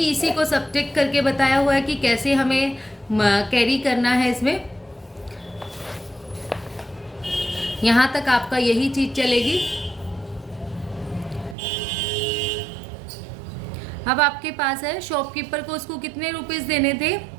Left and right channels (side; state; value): left; drops out; at 11.6 s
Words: इसी को सब्ट्रैक्ट करके बताया हुआ है कि कैसे हमें कैरी करना है। इसमें यहाँ तक आपका यही चीज चलेगी। अब आपके पास है शॉपकीपर को उसको कितने रुपीज़ देने थे?